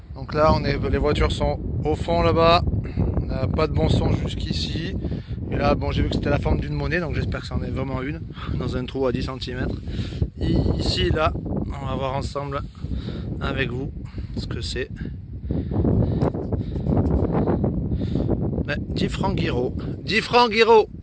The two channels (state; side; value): identical; both; correlation 1.00